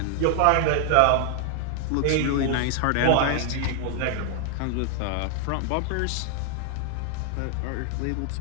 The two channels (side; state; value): both; different; correlation 0.00